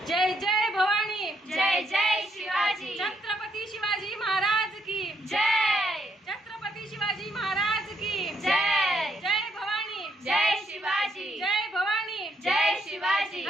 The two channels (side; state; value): both; normal; correlation 0.74